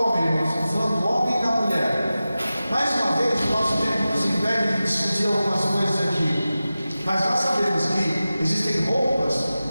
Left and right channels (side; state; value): both; inverted; correlation -0.95